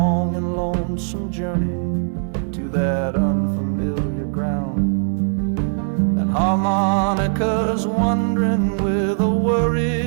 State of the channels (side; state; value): left; silent; digital silence